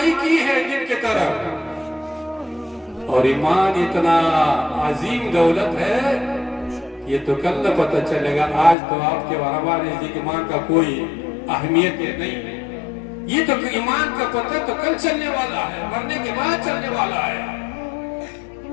کی ہے جن کی طرف. اور ایمان اتنا عظیم دولت ہے، یہ تو کل نہ پتہ چلے گا. آج تو آپ کے ہمارے نزدیک ایمان کا کوئی اہمیت نہیں ہے. یہ تو ایمان کا پتہ تو کل چلنے والا ہے، مرنے کے بعد چلنے والا ہے.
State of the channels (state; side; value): drops out; right; at 8.8 s